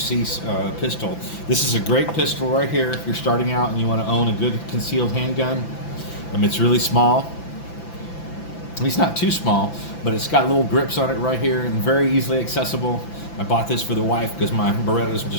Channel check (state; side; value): late; right; 5.9 ms